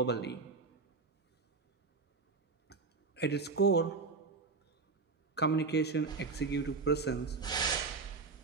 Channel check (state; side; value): quieter; left; 4.3 dB